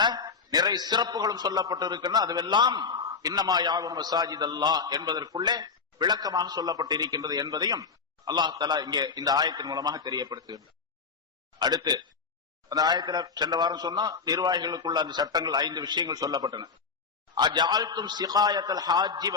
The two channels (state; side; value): quieter; right; 5.2 dB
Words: நிறைய சிறப்புகளும் சொல்லப்பட்டு இருக்கின்றன. அதுவெல்லாம் இன்னமா யாவும் மசாஜித் அல்லாஹ் என்பதற்குள்ளே விளக்கமாக சொல்லப்பட்டு இருக்கின்றது என்பதையும் அல்லாஹ் தஆலா இங்கே இந்த ஆயத்தின் மூலமாக தெரியப்படுத்துகின்றார். அடுத்து அந்த ஆயத்துல சென்ற வாரம் சொன்னா நிர்வாகிகளுக்குள்ள அந்த சட்டங்கள் 5 விஷயங்கள் சொல்லப்பட்டன. அஜஅல்தும் சிகாயத்தல் ஹாஜ்ஜி